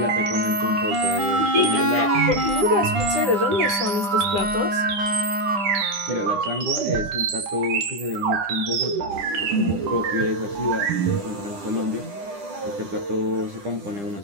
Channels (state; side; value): late; left; 10 ms